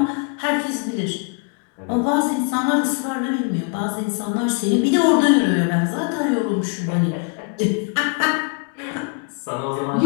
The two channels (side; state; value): right; quieter; 35.1 dB